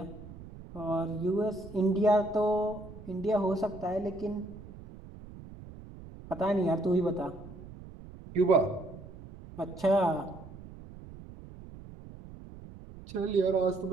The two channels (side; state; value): right; noise; rumble, 16 dB below the sound